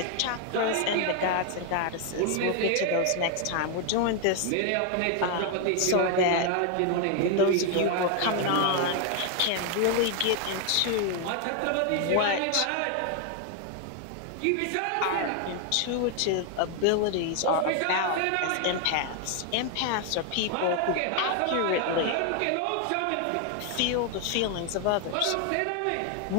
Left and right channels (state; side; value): different; both; correlation 0.00